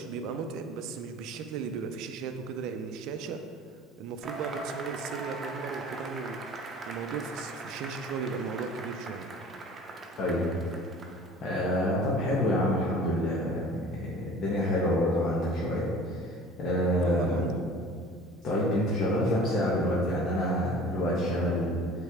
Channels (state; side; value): normal; both; correlation 0.45